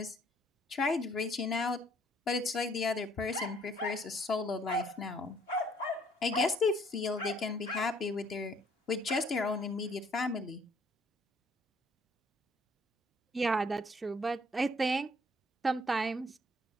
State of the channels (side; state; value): both; normal; correlation 0.62